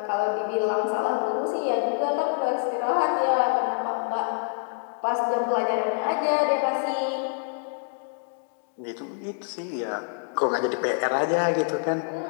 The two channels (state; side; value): silent; right; digital silence